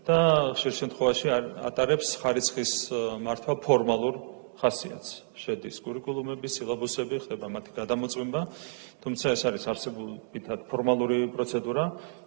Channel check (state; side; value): silent; left; digital silence